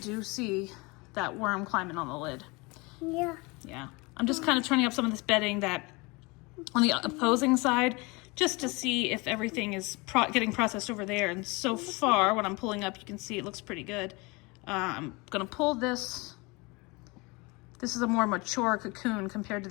see that worm climbing on the lid. Yeah. Yeah. I'm just kind of turning up some of this bedding that on the opposing side just to see if everything is getting processed over there. And so far, when I'm pulling up, you can see it looks pretty good. I'm going to pull this. This is a more mature cocoon compared to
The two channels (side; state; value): right; quieter; 26.2 dB